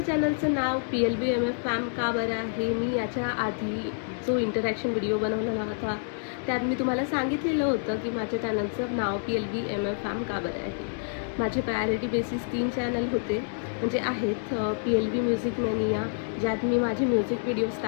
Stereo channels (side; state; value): right; silent; 59 dB below the other